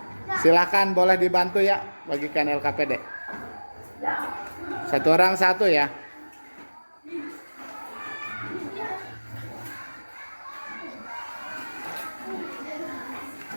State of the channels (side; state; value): both; inverted; correlation -1.00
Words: Silakan, boleh dibantu ya bagikan LKPD. Satu orang satu ya.